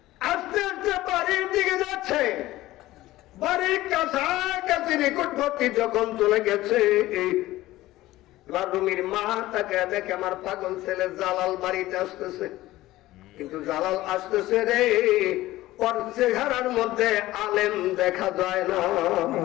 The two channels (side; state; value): right; quieter; 16.7 dB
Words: আস্তে আস্তে বাড়ির দিকে যাচ্ছে। বাড়ির কাছাকাছি নিকটবর্তী যখন চলে গেছে, এবার রুমির মা তাকে দেখে, আমার পাগল ছেলে জালাল বাড়িতে আসতেছে। কিন্তু জালাল আসতেছে রে, ওর চেহারার মধ্যে আলেম দেখা যায় না।